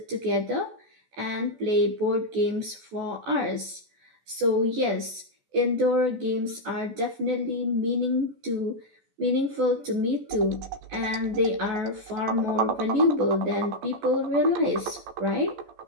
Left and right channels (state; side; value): late; left; 14 ms